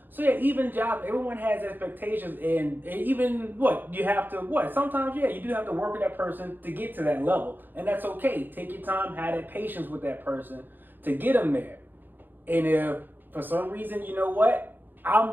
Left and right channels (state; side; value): late; left; 0.091 ms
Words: So yeah, even jobs, everyone has expectations, and even sometimes you do have to work with that person to get to that level, and that's okay. Take your time, have that patience with that person to get them there. And if for some reason, you know what, I'm